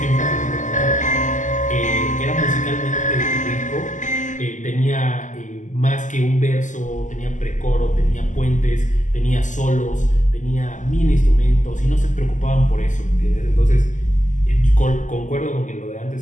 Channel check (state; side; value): late; right; 0.37 ms